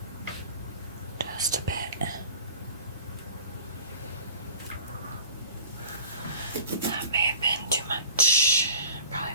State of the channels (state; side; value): inverted; both; correlation -0.42